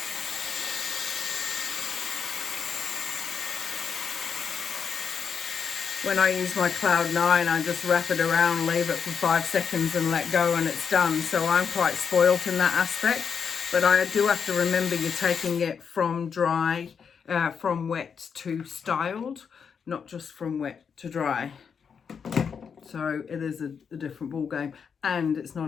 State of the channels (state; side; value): quieter; right; 6.6 dB